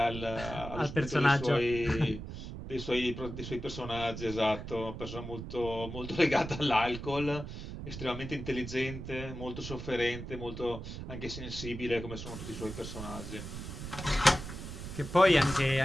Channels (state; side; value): noise; right; rumble, 9 dB below the sound